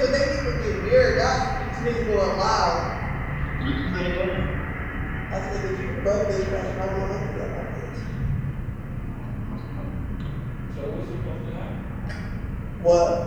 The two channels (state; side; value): identical; both; correlation 1.00